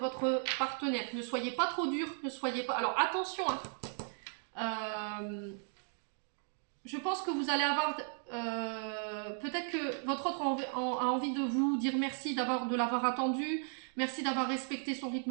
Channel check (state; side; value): silent; left; 54 dB below the other